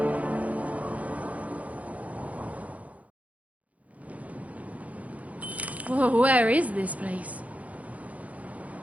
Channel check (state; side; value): late; left; 0.068 ms